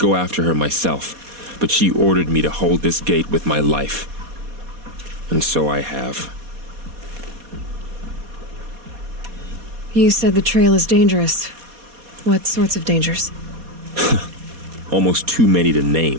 after her myself, but she ordered me to hold this gate with my life. And so I have. You said the trail is dangerous. What sorts of dangers? Almost too many to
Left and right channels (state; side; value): late; left; 4.2 ms